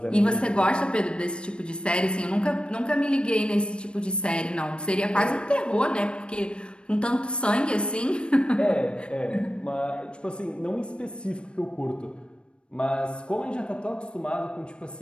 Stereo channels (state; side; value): late; right; 0.056 ms